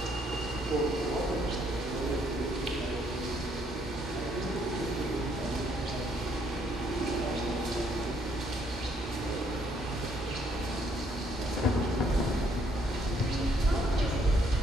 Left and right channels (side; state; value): both; normal; correlation 0.69